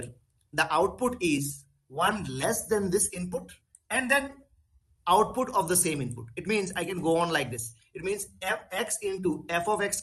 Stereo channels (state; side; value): identical; both; correlation 1.00